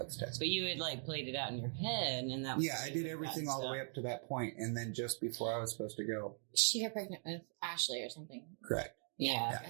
test. But you had played it out in your head, and that was I did everything all the way up to that point, and then just before I was supposed to go, she got pregnant with Ashley or something. Correct. Yeah.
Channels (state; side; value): silent; left; 51 dB below the other